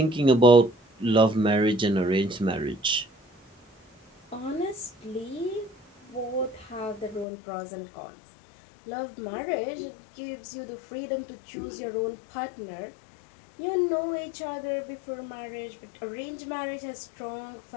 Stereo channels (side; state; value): right; drops out; at 7.2 s